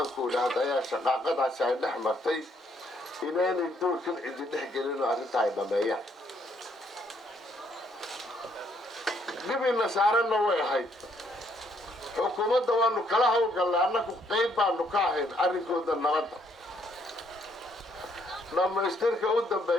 ku idhaahdaa shaqaaqadaasi ay dhex martay inaanay doorkan cidi dhex gelin oo arrinta ay dhameeyaan dhibina saaranna way ahayd xukuumadda waanu kala howlgallay annagu qayb baanu ka ahayn arrinkooda nabadda dhammaystirka u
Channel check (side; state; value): both; normal; correlation 0.70